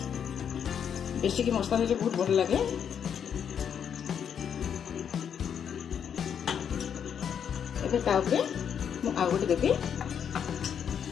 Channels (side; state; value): right; quieter; 8.1 dB